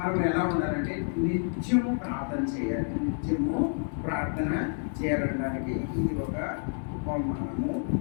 ఎలా ఉండాలంటే నిత్యము ప్రార్థన చేయాలి. నిత్యము ప్రార్థన చేయాలనడానికి ఇది ఒక ఉపమానము.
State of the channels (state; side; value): silent; right; 59 dB below the other